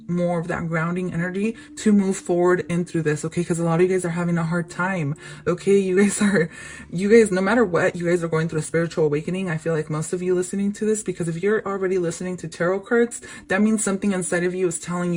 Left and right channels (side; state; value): both; identical; correlation 1.00